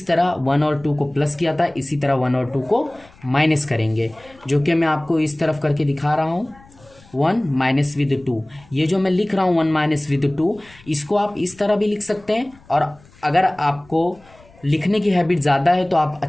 तरह 1 और 2 को प्लस किया था इसी तरह 1 और 2 को माइनस करेंगे, जो कि मैं आपको इस तरफ करके दिखा रहा हूँ। 1 माइनस विद 2, ये जो मैं लिख रहा हूँ 1 माइनस विद 2, इसको आप इस तरह भी लिख सकते हैं। और अगर आपको लिखने की हैबिट ज़्यादा है तो आप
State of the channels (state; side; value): noise; left; rumble, 26 dB below the sound